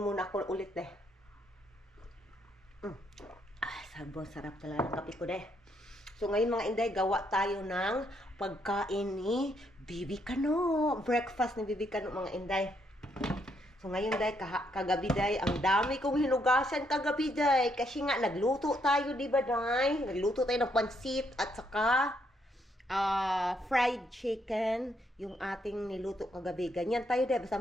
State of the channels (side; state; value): both; normal; correlation 0.74